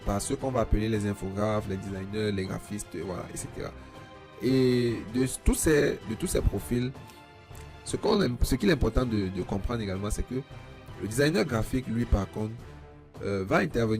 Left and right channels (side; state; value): both; identical; correlation 1.00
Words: par ceux qu'on va appeler les infographes, les designers, les graphistes, voilà, etc. Et de tous ces profils, ce qu'il est important de comprendre également, c'est que le designer graphique, lui, par contre, va